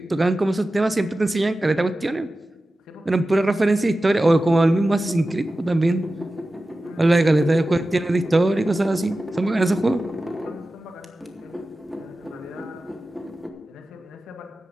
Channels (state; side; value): normal; both; correlation 0.94